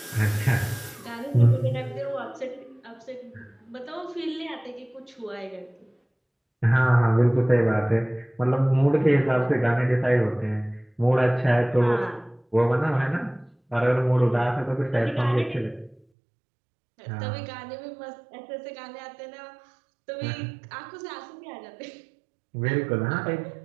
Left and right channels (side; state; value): left; drops out; at 16.0 s